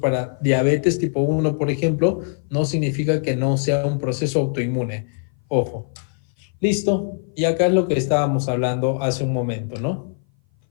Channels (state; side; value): silent; right; 58 dB below the other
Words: diabetes tipo 1, por ejemplo, no significa que no sea un proceso autoinmune. Ojo. Listo. Y acá es lo que estábamos hablando hace un momento, ¿no?